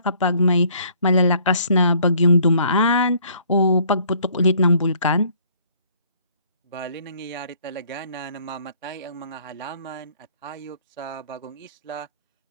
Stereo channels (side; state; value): both; inverted; correlation -0.61